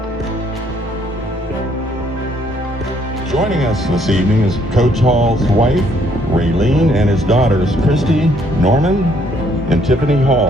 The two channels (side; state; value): both; normal; correlation 0.67